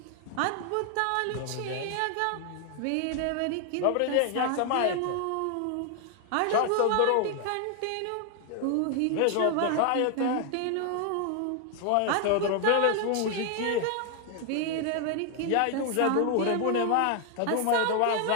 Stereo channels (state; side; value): different; both; correlation 0.00